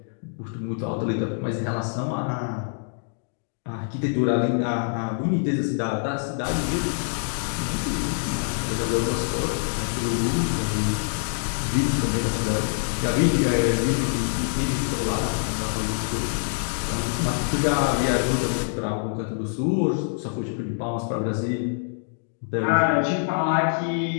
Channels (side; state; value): right; silent; digital silence